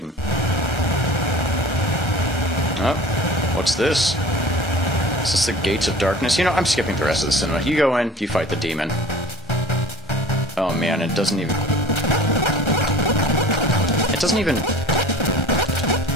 Oh, what's this? Is this the Gates of Darkness? You know, I'm skipping the rest of the cinema. You go in, you fight the demon. Oh man, it doesn't even...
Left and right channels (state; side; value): normal; both; correlation 0.42